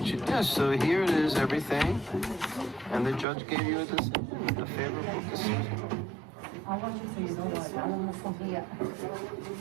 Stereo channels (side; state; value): left; drops out; at 3.2 s